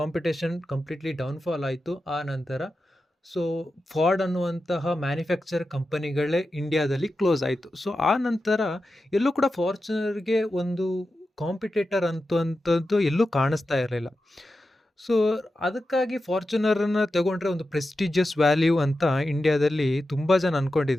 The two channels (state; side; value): normal; both; correlation 0.91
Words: ಕಂಪ್ಲೀಟ್ಲಿ ಡೌನ್ಫಾಲ್ ಆಯಿತು. ಆ ನಂತರ ಸೊ ಫಾರ್ಡ್ ಅನ್ನುವಂತಹ ಮ್ಯಾನುಫ್ಯಾಕ್ಚರ್ ಕಂಪನಿಗಳೇ ಇಂಡಿಯಾದಲ್ಲಿ ಕ್ಲೋಸ್ ಆಯಿತು. ಸೊ ಆ ನಂತರ ಎಲ್ಲೂ ಕೂಡ ಫಾರ್ಚುನರ್ಗೆ ಒಂದು ಕಾಂಪಿಟೇಟರ್ ಅಂತದ್ದು ಎಲ್ಲೂ ಕಾಣಿಸ್ತಾ ಇರಲಿಲ್ಲ. ಸೊ ಅದಕ್ಕಾಗಿ ಫಾರ್ಚುನರನ್ನು ತಗೊಂಡ್ರೆ ಒಂದು ಪ್ರೆಸ್ಟಿಜಿಯಸ್ ವ್ಯಾಲ್ಯೂ ಅಂತ ಇಂಡಿಯಾದಲ್ಲಿ ತುಂಬ ಜನ